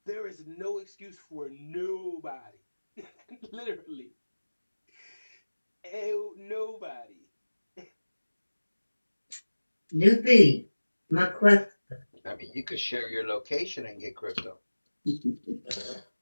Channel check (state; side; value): inverted; both; correlation -1.00